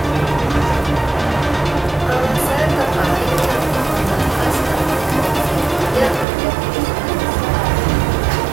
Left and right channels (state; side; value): drops out; left; at 6.2 s